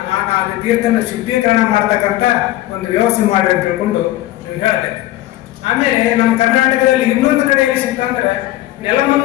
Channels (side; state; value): right; quieter; 15.8 dB